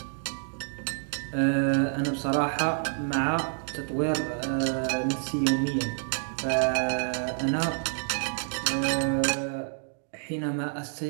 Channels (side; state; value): left; silent; 59 dB below the other